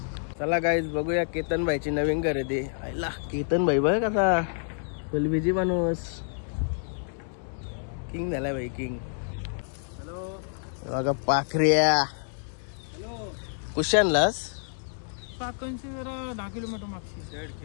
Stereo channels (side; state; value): right; silent; 59 dB below the other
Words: चला गाईज बघूया केतनबाईची नवीन खरेदी. आईला केतनबाई बघ कसा फुलबीजी माणूस. किंग झालाय बाई किंग. हॅलो बघा पाखऱ्या. कुठे आणलास? पाकणची जरा 10 किलोमीटर